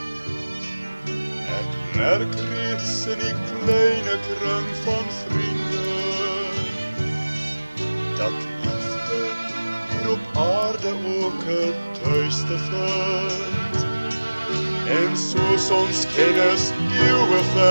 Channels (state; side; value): inverted; both; correlation -1.00